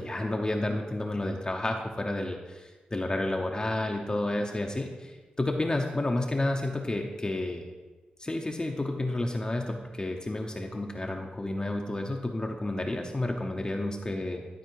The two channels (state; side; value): normal; both; correlation 0.95